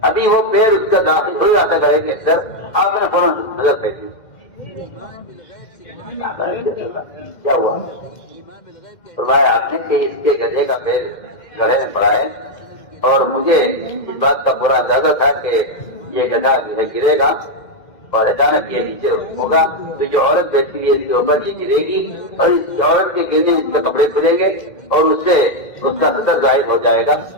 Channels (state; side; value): late; right; 2.1 ms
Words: ابھی وہ پیر اس کا داخل ہو جاتا گڑھے کے اندر آپ نے فوراً نظر پھینکی. کیا ہوا؟ فرمایا آپ نے کہ اس کے گدھے کا پیر گڑھے میں پڑا ہے اور مجھے اس بات کا پورا اندازہ تھا کہ یہ گدھا جو ہے گرے گا اور اچانک یہ نیچے ہوگا تو جو عورت بیٹھی ہوئی ہے اس کے اوپر یہ گرے گی اور اس عورت کے گرنے میں اس کے کپڑے کھلیں گے اور اس سے اس کا سطر ظاہر ہو جائے گا.